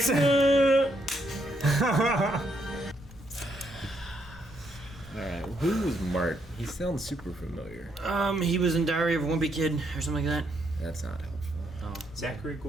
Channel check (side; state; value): both; normal; correlation 0.75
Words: like, Alright, who was Mart? He sounds super familiar. He was in Diary of a Wimpy Kid or something like that. That's not helpful. Oh, Zachary